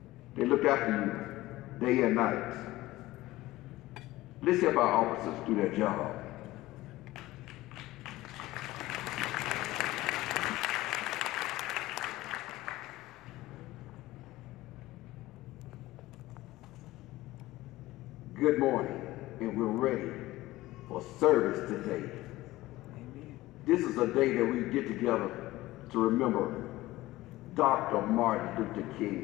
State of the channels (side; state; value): right; quieter; 17.6 dB